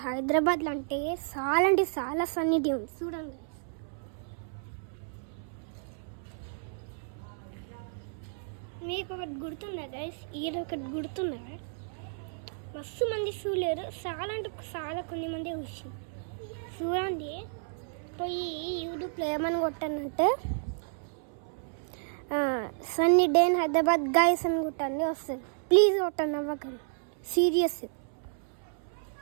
హైదరాబాద్లో అంటే చాలా సన్నీ డే ఉంది చూడండి. మీకు ఒకటి గుర్తుందా గైస్? ఈరోజు ఒకటి గుర్తుందా? మస్తు మంది చూడలేరు, చాలా కొన్ని మంది వచ్చి చూడండి. పోయి యూట్యూబ్లో ఏమని కొట్టానంటే sunny day in Hyderabad guys అని కొట్టండి, వస్తుంది. ప్లీజ్ కొట్టండి, అవ్వకండి, సీరియస్.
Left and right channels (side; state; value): left; silent; 57 dB below the other